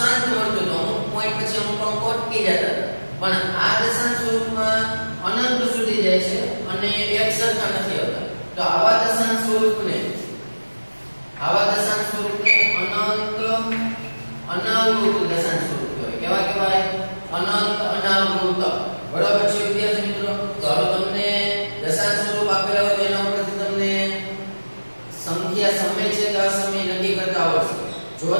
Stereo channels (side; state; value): both; inverted; correlation -1.00